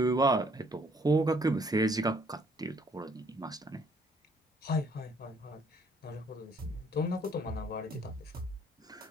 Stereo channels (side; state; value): both; normal; correlation 0.64